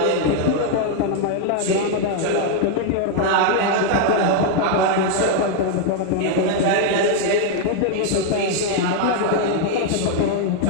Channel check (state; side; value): different; both; correlation 0.00